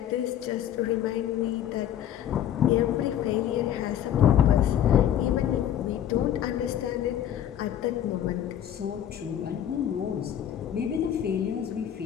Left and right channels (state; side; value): quieter; right; 10.5 dB